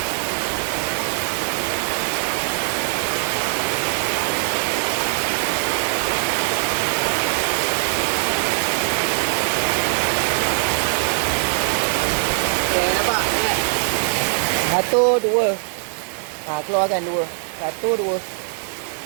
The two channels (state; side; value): silent; left; digital silence